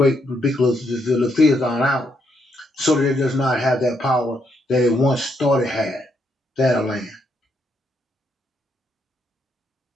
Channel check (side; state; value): both; normal; correlation 0.76